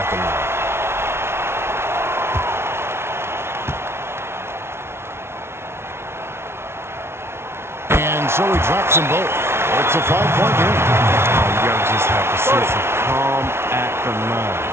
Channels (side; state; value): left; late; 0.12 ms